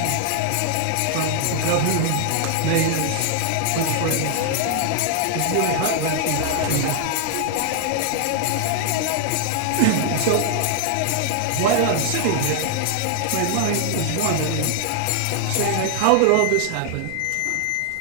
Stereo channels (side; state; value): both; different; correlation 0.00